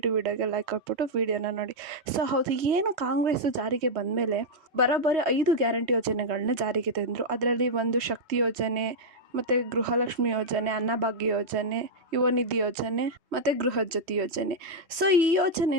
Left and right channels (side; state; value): left; late; 3.1 ms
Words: ವಿಡಿಯೋಗೆ ಲೈಕ್ ಕೊಟ್ಬಿಟ್ಟು ವಿಡಿಯೋನ ನೋಡಿ. ಸೊ ಹೌದು, ಏನು ಕಾಂಗ್ರೆಸ್ಸು ಜಾರಿಗೆ ಬಂದಮೇಲೆ ಬರೋಬ್ಬರಿ 5 ಗ್ಯಾರಂಟಿ ಯೋಜನೆಗಳನ್ನ ಜಾರಿಗೆ ತಂದರು. ಅದರಲ್ಲಿ ಒಂದು ಶಕ್ತಿ ಯೋಜನೆ, ಮತ್ತು ಗೃಹಲಕ್ಷ್ಮಿ ಯೋಜನೆ, ಅನ್ನಭಾಗ್ಯ ಯೋಜನೆ, ಯುವ ನಿಧಿ ಯೋಜನೆ ಮತ್ತು ಗೃಹ ಜ್ಯೋತಿ ಯೋಜನೆ. ಸೊ ಈ